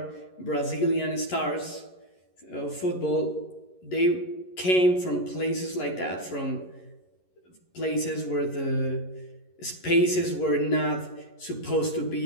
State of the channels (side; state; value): right; late; 11 ms